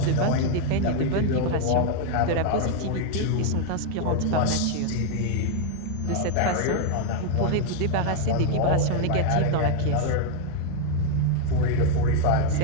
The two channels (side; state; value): both; different; correlation 0.00